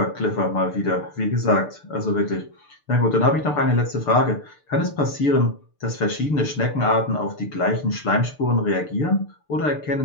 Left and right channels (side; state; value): right; late; 6.8 ms